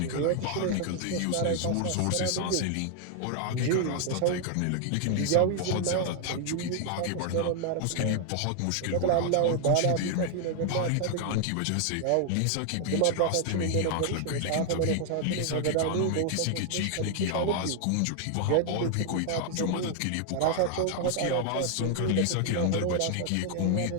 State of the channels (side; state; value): both; different; correlation 0.00